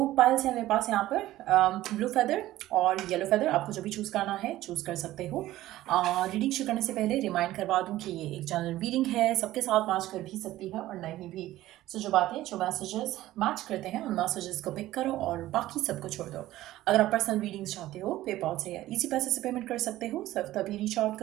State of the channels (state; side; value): quieter; left; 15.4 dB